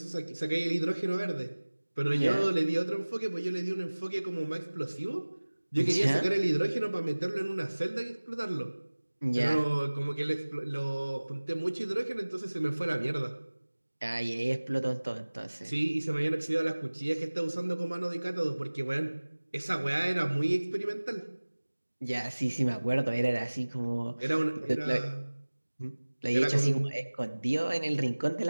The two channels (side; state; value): both; inverted; correlation -1.00